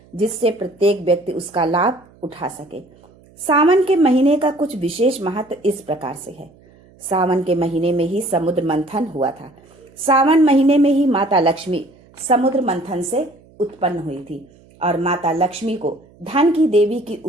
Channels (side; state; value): right; noise; hum, 28 dB below the sound